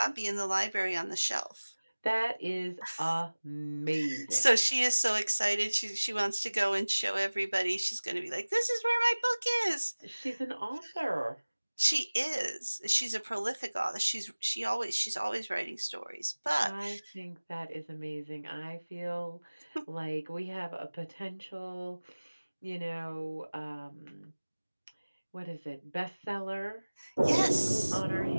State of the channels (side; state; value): both; inverted; correlation -1.00